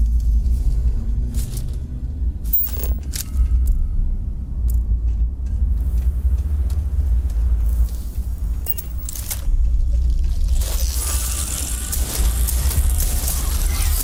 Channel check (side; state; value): both; identical; correlation 1.00